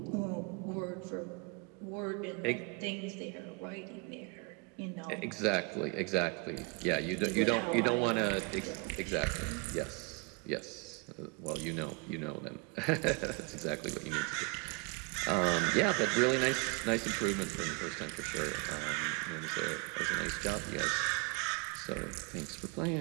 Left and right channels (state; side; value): quieter; left; 29.4 dB